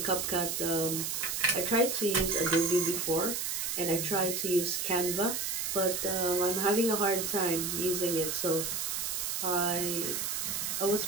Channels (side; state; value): right; noise; hiss, 1 dB below the sound